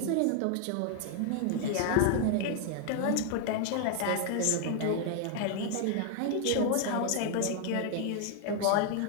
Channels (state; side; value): different; both; correlation 0.00